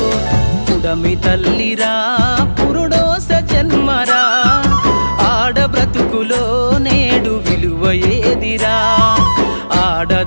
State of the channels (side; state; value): both; inverted; correlation -1.00